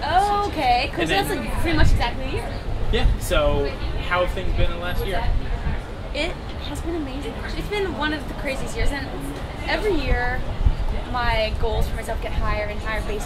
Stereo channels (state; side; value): identical; both; correlation 1.00